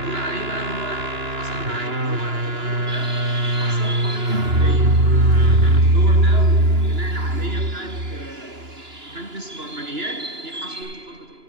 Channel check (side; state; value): left; late; 2.9 ms